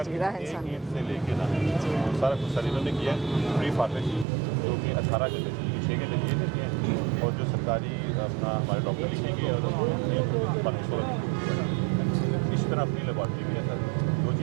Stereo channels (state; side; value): drops out; left; at 4.2 s